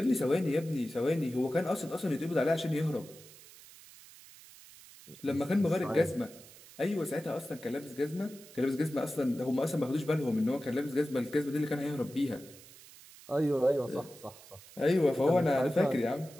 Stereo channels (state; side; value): noise; right; hiss, 20 dB below the sound